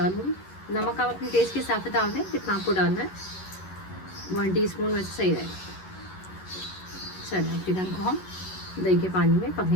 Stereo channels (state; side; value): late; right; 11 ms